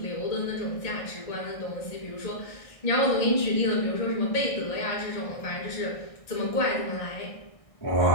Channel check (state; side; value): late; right; 1.6 ms